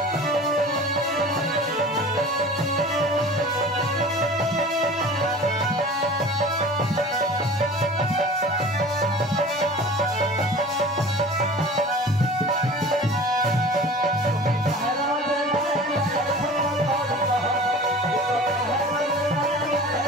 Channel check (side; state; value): both; normal; correlation 0.41